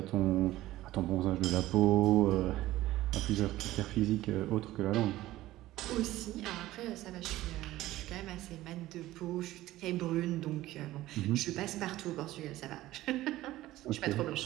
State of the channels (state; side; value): quieter; left; 16.0 dB